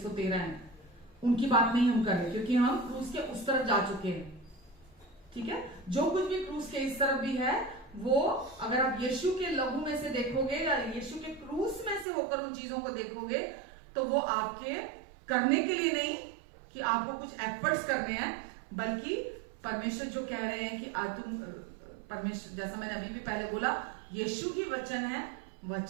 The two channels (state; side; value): drops out; left; at 12.1 s